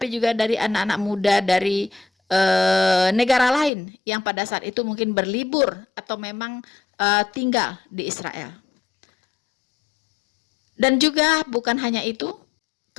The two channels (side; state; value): right; drops out; at 3.7 s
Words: juga dari anak-anak muda dari negara lain yang pada saat itu mungkin berlibur atau memang tinggal di Israel. Dan juga bukan hanya itu,